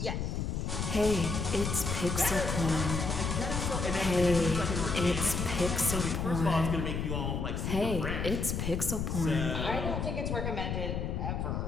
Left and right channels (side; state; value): left; noise; rumble, 2 dB below the sound